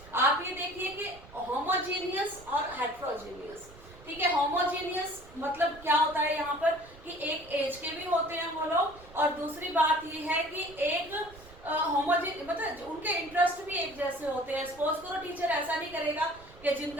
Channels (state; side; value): noise; right; rumble, 21 dB below the sound